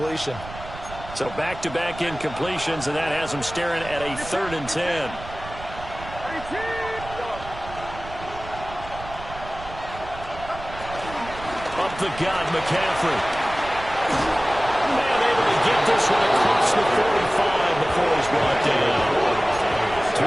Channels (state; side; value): noise; right; rumble, 14 dB below the sound